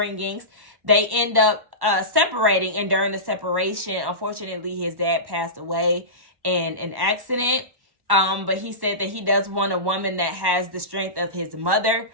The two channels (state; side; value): late; left; 1.1 ms